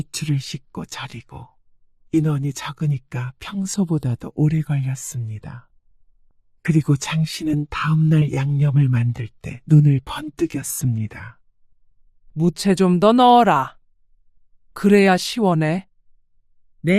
씻고 절이고 인원이 적으니까 평소보다도 오래 걸렸습니다. 그리고 장 씨는 다음날 양념을 만들 때 눈을 번뜩였습니다. 무채 좀 더 넣어라. 그래야 시원해.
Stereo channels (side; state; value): both; identical; correlation 1.00